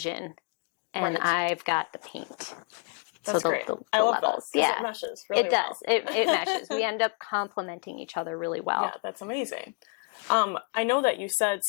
and I've got the paint. That's so great. the I love levels. that. It meshes really it does. It meshes. We end up complementing each other really well. Yeah, that's amazing. I know that you said,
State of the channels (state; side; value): quieter; right; 36.8 dB